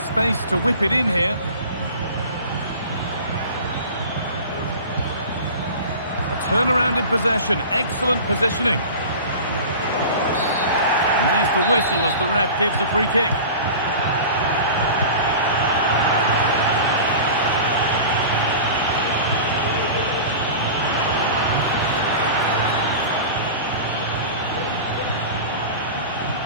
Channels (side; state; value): both; inverted; correlation -0.35